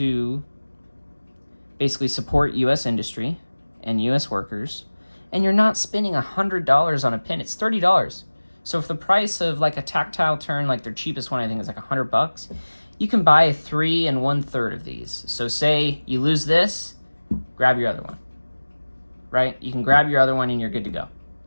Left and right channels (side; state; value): both; inverted; correlation -1.00